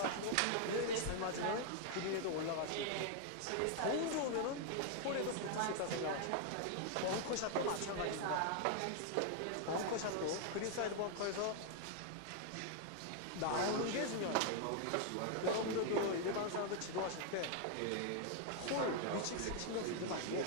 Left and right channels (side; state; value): both; different; correlation 0.00